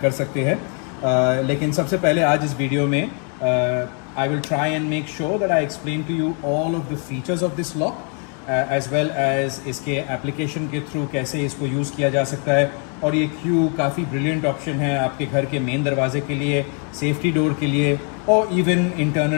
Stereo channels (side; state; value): right; quieter; 39.9 dB